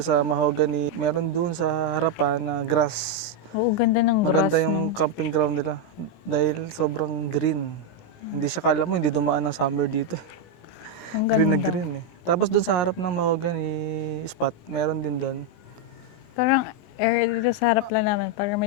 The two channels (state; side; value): late; right; 18 ms